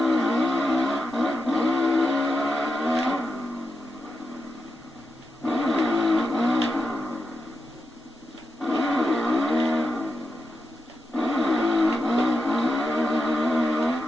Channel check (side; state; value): both; normal; correlation 0.87